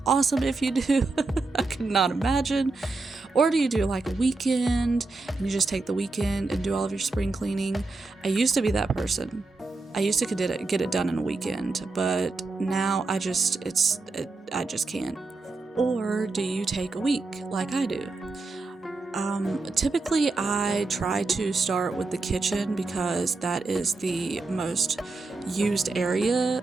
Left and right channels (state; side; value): quieter; left; 3.5 dB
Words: awesome if you do. I could not imagine. Or do you do like a weekend and you just take the weekend and do all of your spring cleaning? I used to be that person. I used to get it done in a weekend, but now I just can't. Or do you take a week like I do? Typically I try to start with the kitchen because that is the most used area,